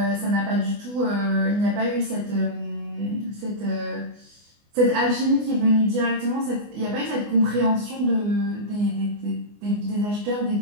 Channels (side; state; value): left; late; 24 ms